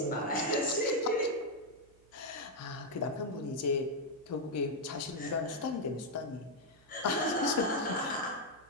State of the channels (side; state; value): right; noise; hum, 28 dB below the sound